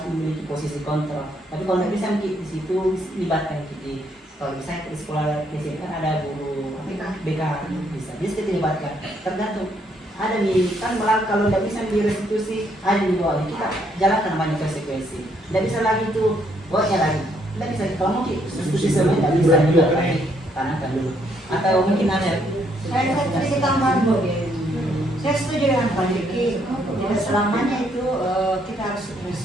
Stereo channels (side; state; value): both; normal; correlation 0.71